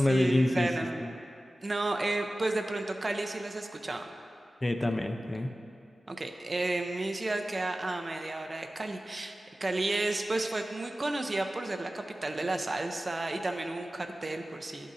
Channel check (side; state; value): both; normal; correlation 0.95